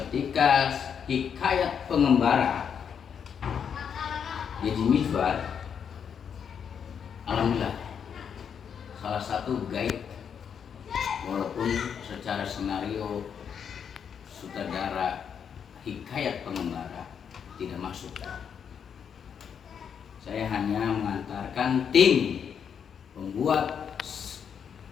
Hikayat Pengembara Deddy Mizwar, alhamdulillah salah satu guide, walaupun secara skenario sutradara Hikayat Pengembara tidak masuk. Saya hanya mengantarkan tim pembuat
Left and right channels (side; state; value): right; quieter; 7.5 dB